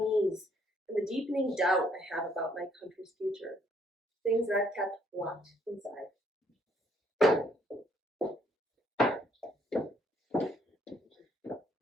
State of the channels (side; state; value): both; normal; correlation 0.67